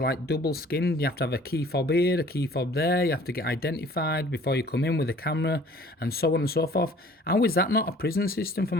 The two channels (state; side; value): normal; both; correlation 0.52